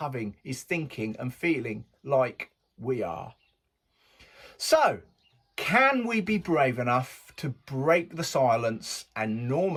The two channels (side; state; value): both; identical; correlation 1.00